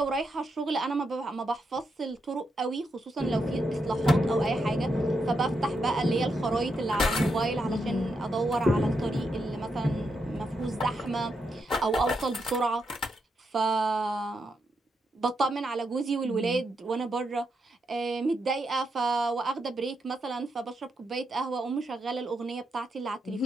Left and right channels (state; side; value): normal; both; correlation 0.82